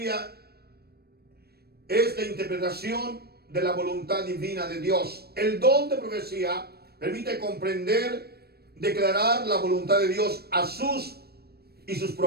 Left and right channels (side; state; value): left; late; 0.46 ms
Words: es la interpretación de la voluntad divina de Dios. El don de profecía permite comprender, declarar la voluntad de Dios a sus